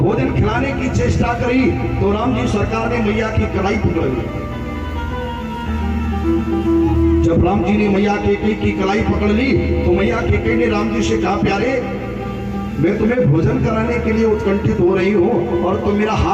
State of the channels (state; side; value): identical; both; correlation 1.00